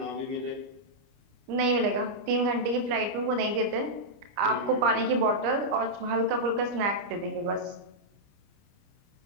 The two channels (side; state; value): left; late; 29 ms